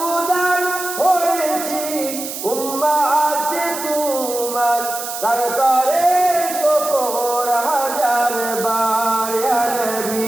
হয়েছি উম্মত তোমার দরবারে শুকর হাজার বার ইয়া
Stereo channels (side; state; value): right; noise; hiss, 7 dB below the sound